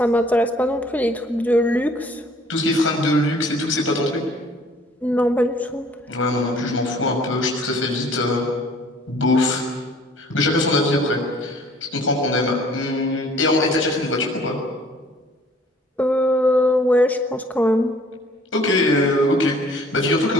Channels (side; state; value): both; normal; correlation 0.55